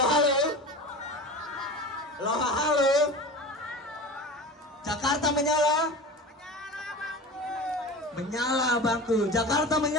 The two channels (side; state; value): both; normal; correlation 0.33